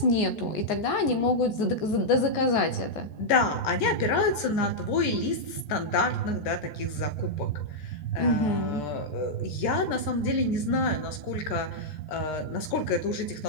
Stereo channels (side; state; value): right; late; 14 ms